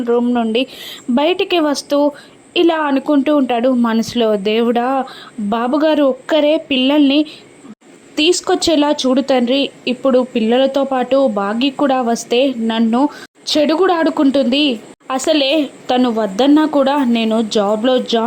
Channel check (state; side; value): identical; both; correlation 1.00